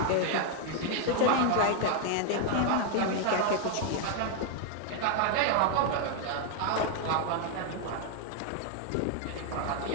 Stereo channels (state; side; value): different; both; correlation 0.00